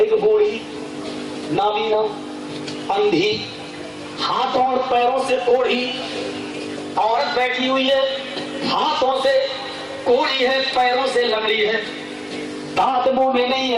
بوڑھی نابینا اندھی ہاتھوں اور پیروں سے کوڑھی عورت بیٹھی ہوئی ہے. ہاتھوں سے کوڑی ہے, پیروں سے لنگڑی ہے, دانت منہ میں نہیں ہے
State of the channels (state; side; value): identical; both; correlation 1.00